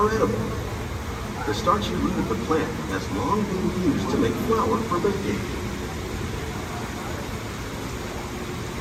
edible. The starchy root of the plant has long been used to make flour for baking.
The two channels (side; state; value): both; identical; correlation 1.00